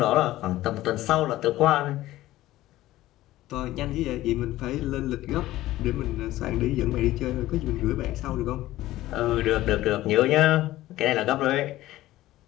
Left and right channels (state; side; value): quieter; right; 15.8 dB